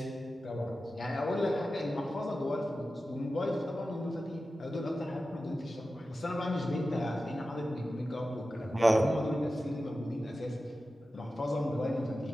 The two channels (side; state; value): both; normal; correlation 0.93